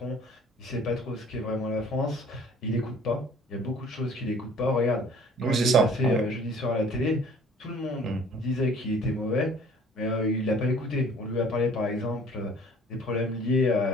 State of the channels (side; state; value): both; normal; correlation 0.52